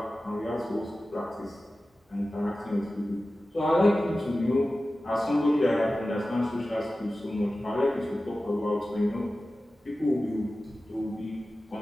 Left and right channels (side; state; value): both; normal; correlation 0.95